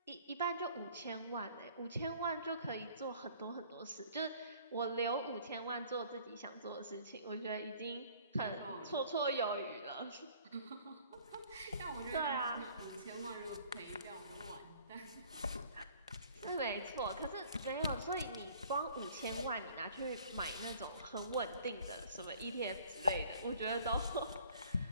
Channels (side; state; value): both; inverted; correlation -0.54